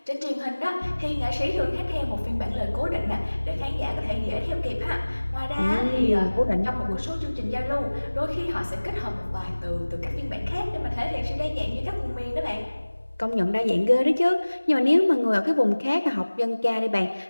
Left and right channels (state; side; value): inverted; both; correlation -1.00